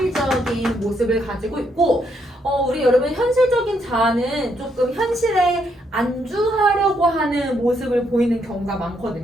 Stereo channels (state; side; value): normal; both; correlation 0.75